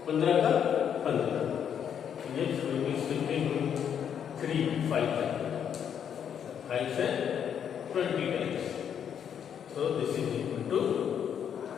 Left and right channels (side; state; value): right; quieter; 8.5 dB